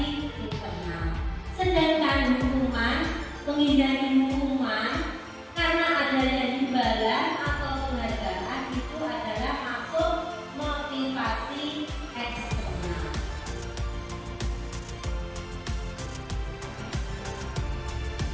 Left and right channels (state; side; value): identical; both; correlation 1.00